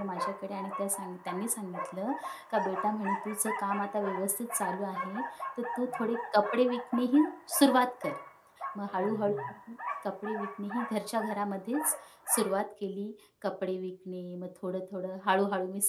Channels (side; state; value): both; identical; correlation 1.00